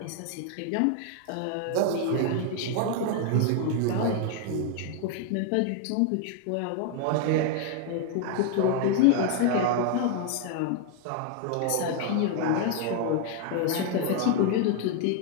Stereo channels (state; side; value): different; both; correlation 0.00